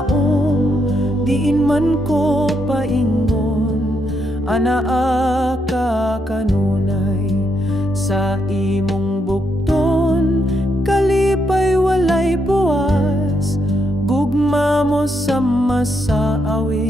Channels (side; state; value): both; normal; correlation 0.78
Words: diin man ko paingon, anaa ka kanunay. Sa imong bukton, kalipay walay buwas,